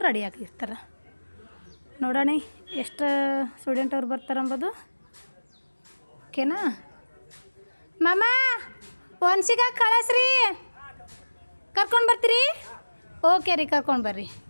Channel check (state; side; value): inverted; both; correlation -1.00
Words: ರೆಡಿ ಆಗಿರ್ತಾರೆ. ನೋಡೋಣ ಎಷ್ಟು ಸ್ಟೂಡೆಂಟ್ ಅವ್ರು ಬರ್ತಾರೆ ಅಂಬೋದು. ಓಕೆನಾ? ಮಾಮ, ಒನ್ಸಿಗ ಕಳಿಸ್ರಿ, ಕರ್ಕೊಂಡು ಬರ್ತೀರಿ? ಓಕೆ ರೀ, ಕರ್ಕೊಂಡು ಬರ್ರಿ.